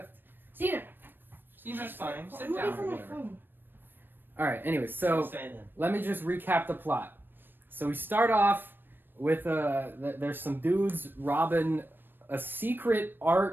Cena. She's fine. Sit I'm away down. from my whatever. phone. All right. Anyways, So, so let me just recap the plot. So we start off with there's some dudes robbing a secret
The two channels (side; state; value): left; late; 0.095 ms